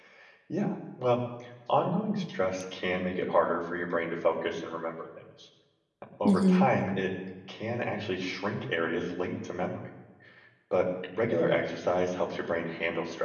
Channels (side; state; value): both; identical; correlation 1.00